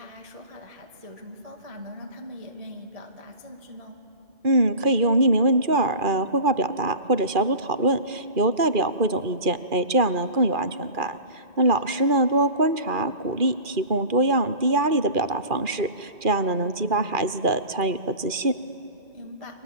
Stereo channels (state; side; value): late; left; 2.4 ms